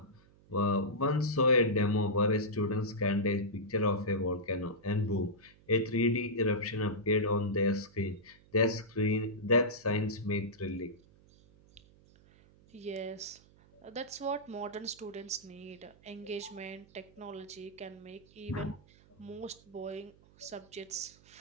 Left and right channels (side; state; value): right; noise; hum, 27 dB below the sound